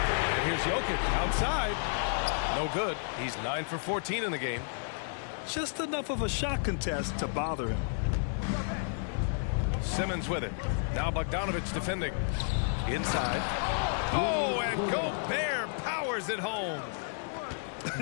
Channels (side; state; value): right; silent; digital silence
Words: here's Jokic outside. No good. He's 9 for 14 in the game. Just enough of a shot contest to bother him. Simmons with it. Now Bogdanovic defending. Inside. Oh, and Gobert powers it home.